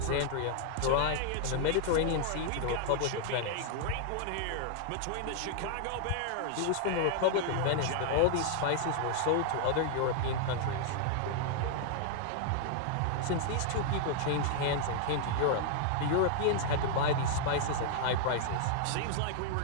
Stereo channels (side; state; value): both; different; correlation 0.00